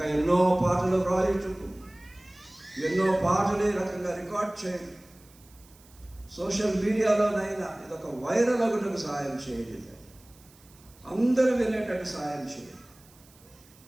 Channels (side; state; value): right; noise; hiss, 27 dB below the sound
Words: ఎన్నో పాటలు రాయుటకు, ఎన్నో పాటలు ఈ రకంగా రికార్డ్ చేయండి. సోషల్ మీడియాలోనైనా ఇదొక వైరల్ అగుటకు సహాయం చేయండి. అందరూ వినేటట్టు సహాయం చేయండి.